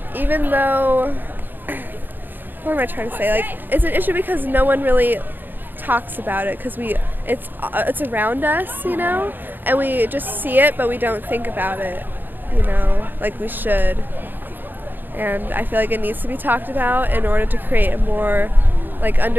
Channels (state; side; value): late; left; 0.092 ms